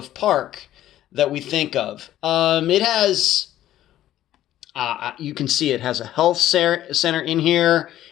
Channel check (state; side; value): quieter; right; 13.0 dB